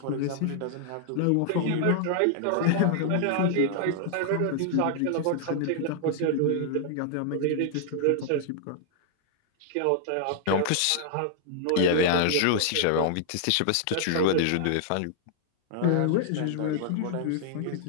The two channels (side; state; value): both; different; correlation -0.01